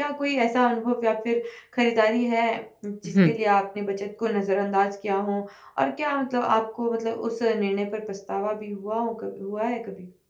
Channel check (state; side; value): identical; both; correlation 1.00